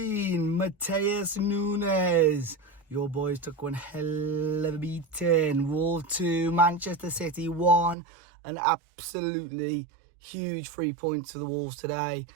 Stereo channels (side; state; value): left; drops out; at 8.0 s